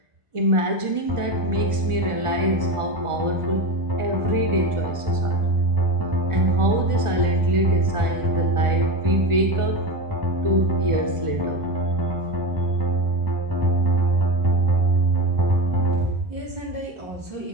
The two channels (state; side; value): late; left; 1.4 ms